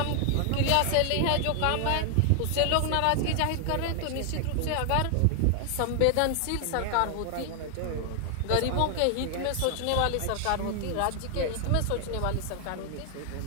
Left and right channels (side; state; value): both; different; correlation 0.00